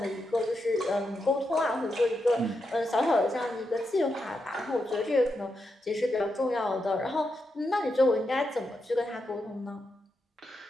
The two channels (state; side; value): normal; both; correlation 0.85